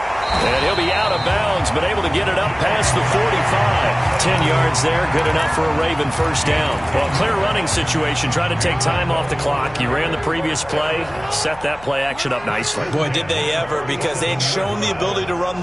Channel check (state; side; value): noise; left; hum, 22 dB below the sound